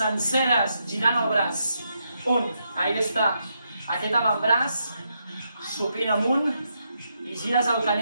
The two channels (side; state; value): both; inverted; correlation -0.81